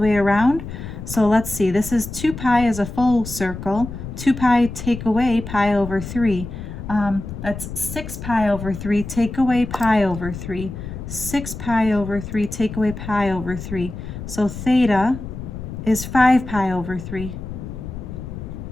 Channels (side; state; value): left; noise; rumble, 9 dB below the sound